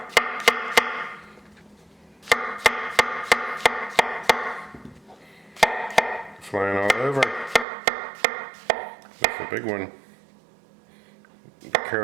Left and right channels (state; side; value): drops out; left; at 7.7 s